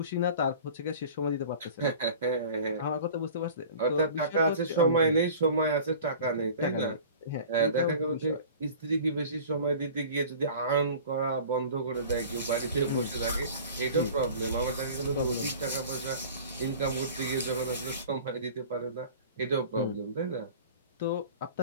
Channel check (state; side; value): inverted; both; correlation -0.42